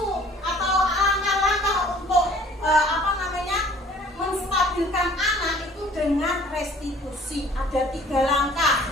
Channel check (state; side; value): normal; both; correlation 0.53